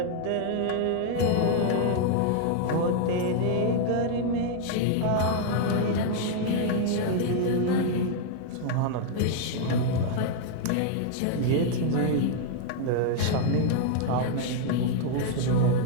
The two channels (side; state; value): both; different; correlation 0.00